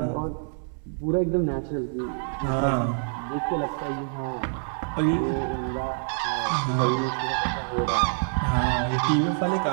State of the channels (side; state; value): left; silent; digital silence